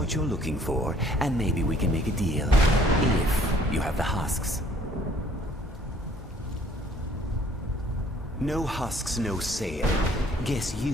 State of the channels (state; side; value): normal; both; correlation 0.59